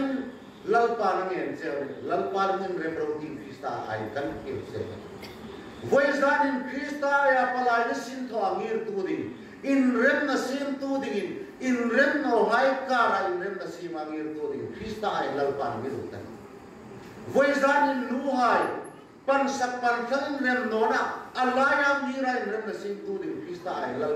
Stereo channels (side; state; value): both; identical; correlation 1.00